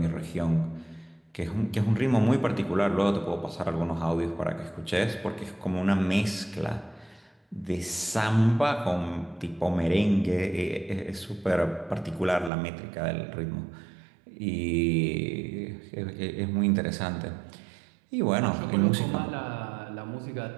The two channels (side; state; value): left; drops out; at 12.5 s